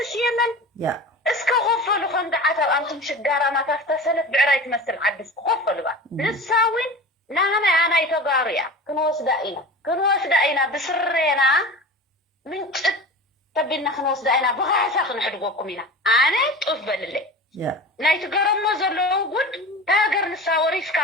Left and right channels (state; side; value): normal; both; correlation 0.33